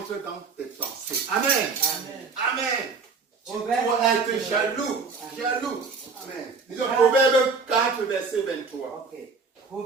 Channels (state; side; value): quieter; left; 4.7 dB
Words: dans tes pensées. Amen. Amen. Tu dois être jaloux. Amen. Disons Proverbe 4 verset 23. Ok.